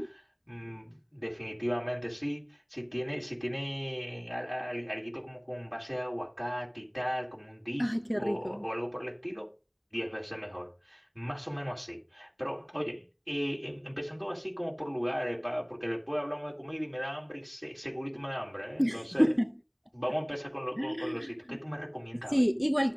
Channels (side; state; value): both; identical; correlation 1.00